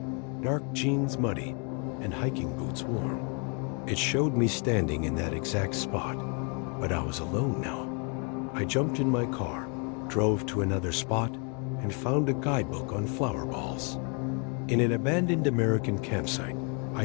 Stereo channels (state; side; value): quieter; right; 36.9 dB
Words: dark jeans muddy, and hiking boots worn. It showed me standing in that exact spot, but I was alone now. I jumped in my car, drove to another spot, and found a guidebook on flower balls. In an abandoned American campsite,